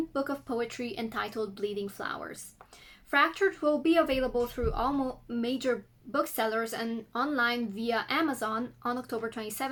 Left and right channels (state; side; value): identical; both; correlation 1.00